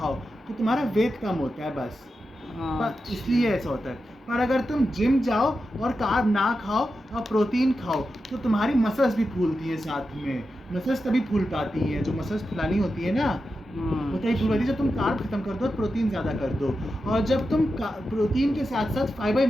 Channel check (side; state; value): both; normal; correlation 0.90